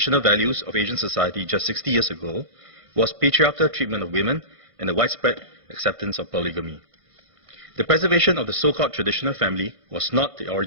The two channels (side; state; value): left; late; 1.5 ms